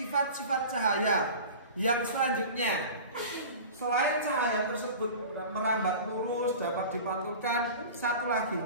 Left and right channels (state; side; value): inverted; both; correlation -0.36